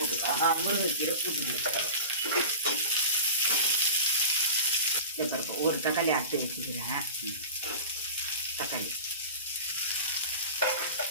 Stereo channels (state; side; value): inverted; both; correlation -0.33